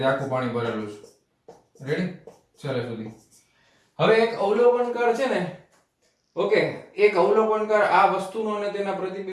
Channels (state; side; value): identical; both; correlation 1.00